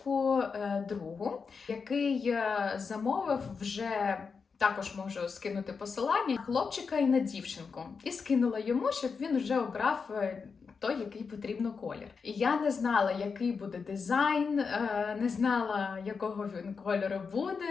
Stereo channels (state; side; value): quieter; right; 5.3 dB